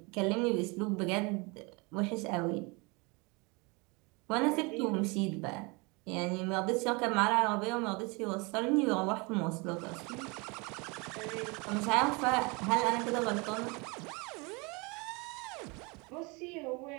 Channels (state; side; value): quieter; left; 28.5 dB